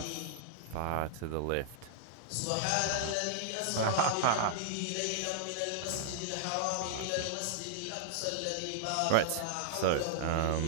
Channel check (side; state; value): both; different; correlation -0.01